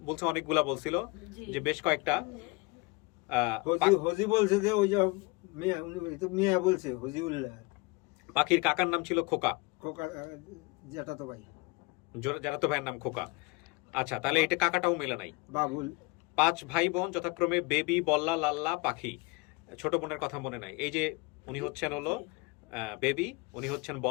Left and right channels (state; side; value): quieter; right; 25.8 dB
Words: বলছে অনেকগুলা বলছিল, যে বেশ কয়েকটা। হজি বলছে যে ওই যে মিয়া, উনি তো মিয়া বলছে হজিউল্লাহ। পাখির কাকার নাম ছিল খোকা, খোকা যেটা তো ভাই, যারা তো ভাইয়ের নাম খোকা। আচ্ছা, তাহলে এটা কাকাটাও মেলে নাই। বাবুল। 5 ভাই বোন যথাক্রমে বেবি, বল্লা, লাল্লা, পাখি। ছোট বোনের কথা মনে নাই। এই যে উনি হচ্ছেন হলো বেবি, উনি হচ্ছেন